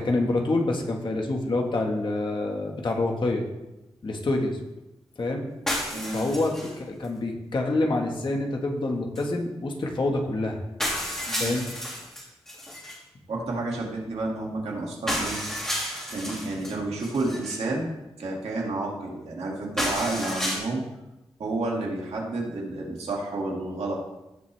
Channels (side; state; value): both; normal; correlation 0.78